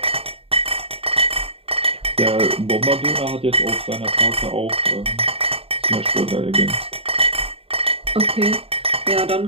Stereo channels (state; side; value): late; left; 0.28 ms